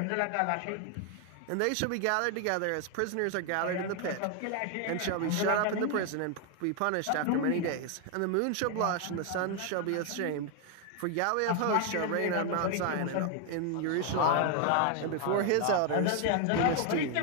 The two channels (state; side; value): different; both; correlation 0.01